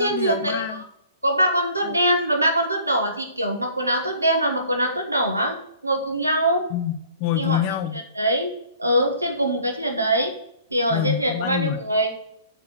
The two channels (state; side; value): inverted; both; correlation -0.53